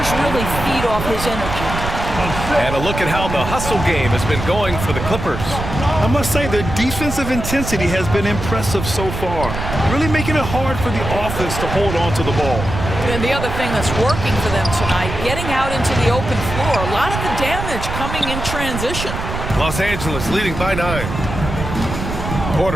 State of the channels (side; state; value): right; noise; rumble, 6 dB below the sound